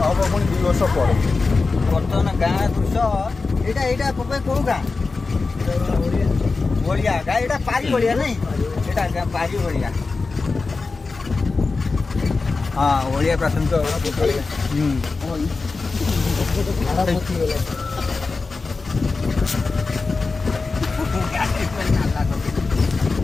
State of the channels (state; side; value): quieter; right; 4.0 dB